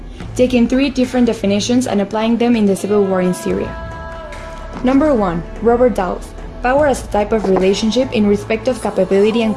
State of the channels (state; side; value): identical; both; correlation 1.00